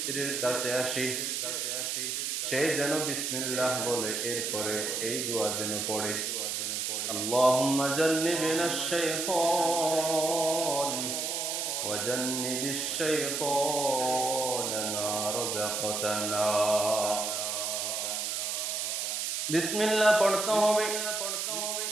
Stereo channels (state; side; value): noise; right; hiss, 1 dB below the sound